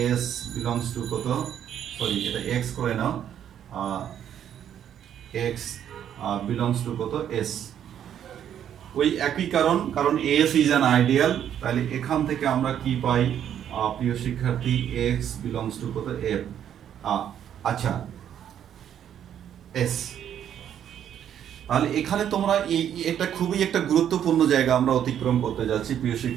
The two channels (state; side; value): quieter; left; 9.7 dB